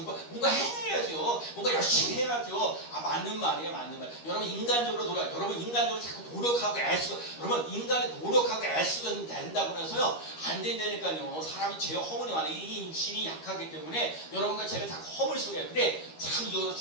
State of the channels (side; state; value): right; late; 13 ms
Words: 뭔가 해야죠. 뭔가 열심히 해야죠. 맞는 말이에요, 맞는 말. 여러분 인간적으로 자꾸 노력하고 애쓰고, 여러분 인간이 노력하고 애쓰고 된다고 해서요 안 된다니까요. 사람이 죄 허물이 많아요. 이 육신이 약하기 때문에 여러분과 제가 자꾸 허물 속에. 근데 참 이거